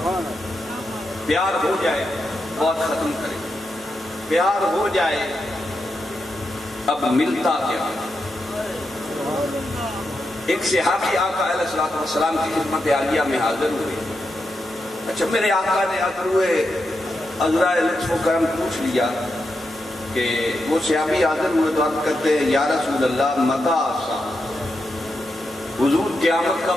پیار ہو جائے بہت ختم کرے، پیار ہو جائے اب ملتا کیا؟ ایک صحابی آقا علیہ السلام کی خدمت عالیہ میں حاضر ہوئے۔ اچھا میرے آقا نے حاضر ہوئے، عذرائے لطف و کرم پوچھ لیا کہ وہ صحابی حاضر ہوئے تو عرض کرتے ہیں یا رسول اللہ متى الساعہ، حضور قیامت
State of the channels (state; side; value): normal; both; correlation 0.86